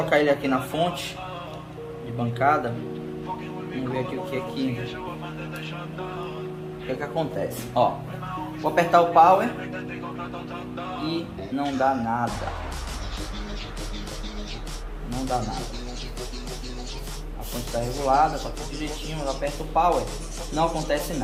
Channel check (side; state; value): both; identical; correlation 1.00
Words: ele aqui na fonte de bancada. Vamos ver aqui o que é que acontece. Ó, vou apertar o power e não dá nada. Não dá nada. A fonte está regulada, está tudo direitinho. Eu aperto o power, não acontece